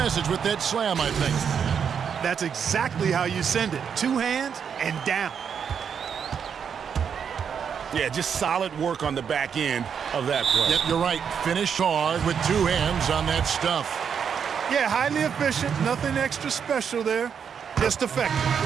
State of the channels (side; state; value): left; quieter; 7.3 dB